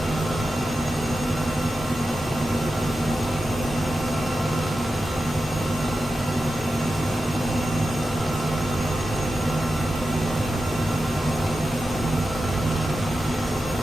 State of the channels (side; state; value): both; normal; correlation 0.91